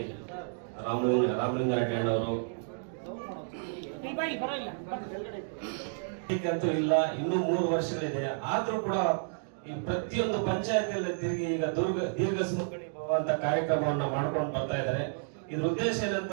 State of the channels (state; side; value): silent; left; digital silence